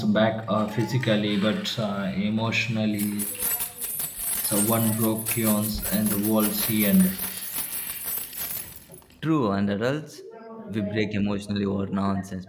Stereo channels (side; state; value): both; identical; correlation 1.00